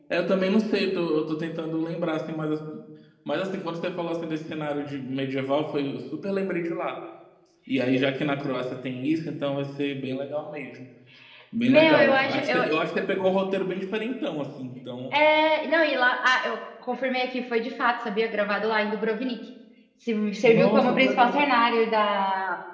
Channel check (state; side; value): identical; both; correlation 1.00